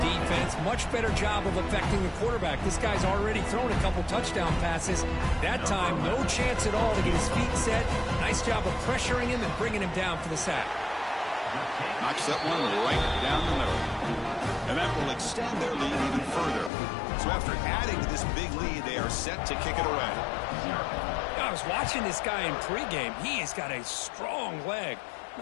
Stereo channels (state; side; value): drops out; right; at 16.7 s